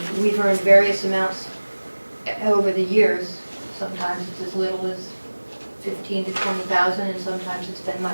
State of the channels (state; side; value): inverted; both; correlation -1.00